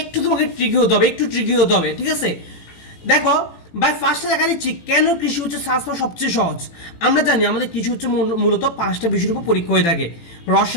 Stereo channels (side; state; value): right; late; 18 ms